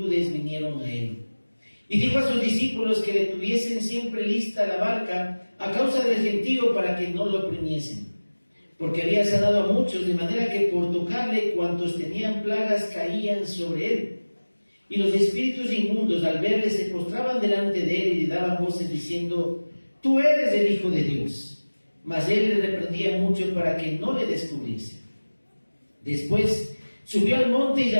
vinieron a él. Y dijo a sus discípulos que le tuviesen siempre lista la barca a causa del gentío, para que no lo oprimiesen, porque había sanado a muchos, de manera que por tocarle cuantos tenían plagas caían sobre él. Y los espíritus inmundos, al verle, se postraban delante de él y le daban voces diciendo: tú eres el Hijo de Dios. Mas él le reprendía mucho para que no le descubriese. Después subió al monte y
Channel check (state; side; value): inverted; both; correlation -1.00